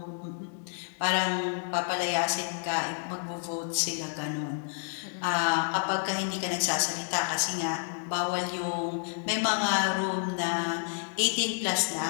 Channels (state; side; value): silent; right; 58 dB below the other